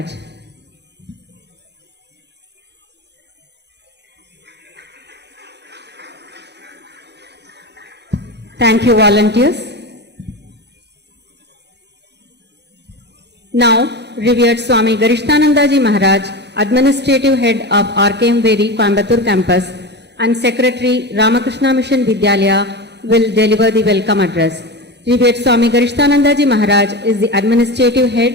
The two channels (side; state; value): both; normal; correlation 0.23